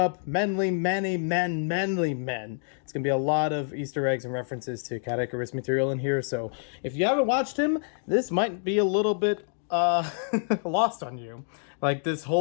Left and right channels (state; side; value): silent; right; digital silence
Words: manly men. It's going to be a lot of Easter eggs and references to Caddicarus material in here, so if you haven't watched him, this might be a little bit lost on you. Like this